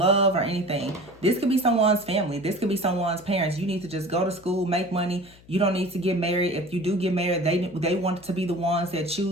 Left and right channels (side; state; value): left; noise; hum, 25 dB below the sound